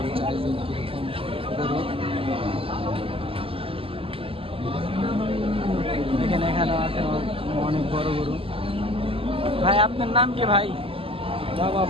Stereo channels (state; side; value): late; left; 0.26 ms